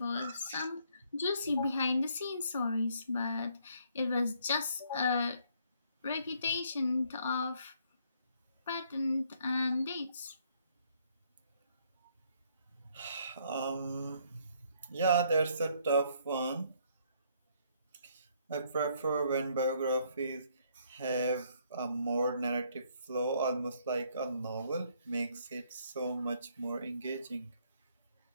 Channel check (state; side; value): inverted; both; correlation -0.67